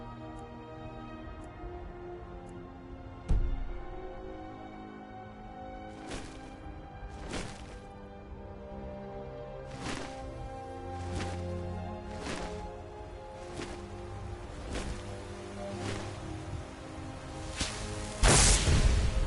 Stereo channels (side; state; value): both; identical; correlation 1.00